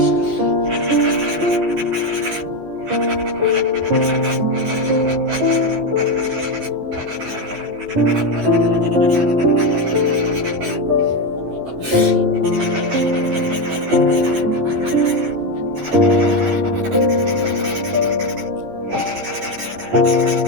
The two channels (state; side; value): late; left; 10 ms